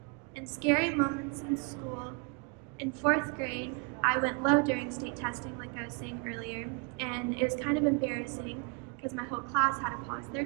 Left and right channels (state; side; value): quieter; left; 34.5 dB